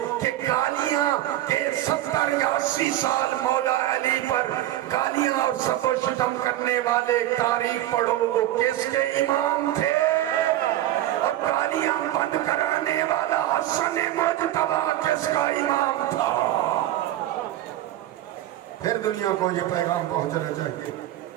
کہ گالیاں کے 70 یا 80 سال مولا علی پر گالیاں اور سب و شتم کرنے والے تاریخ پڑھو وہ کس کے امام تھے, اور گالیاں بند کرانے والا حسن مجتبی کس کا امام تھا. پھر دنیا کو یہ پیغام پہنچنا چاہیے.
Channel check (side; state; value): left; quieter; 14.0 dB